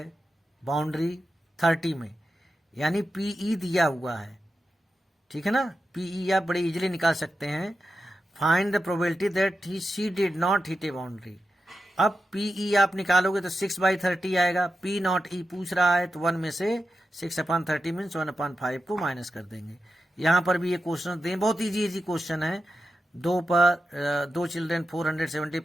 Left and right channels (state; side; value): normal; both; correlation 0.90